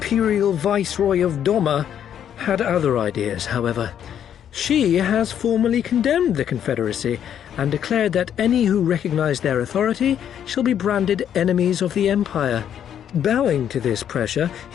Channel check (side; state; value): right; quieter; 9.5 dB